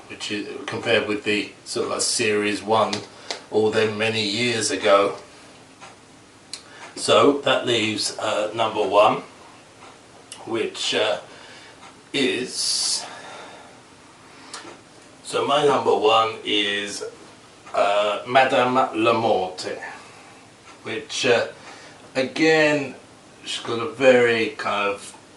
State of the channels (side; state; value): both; identical; correlation 1.00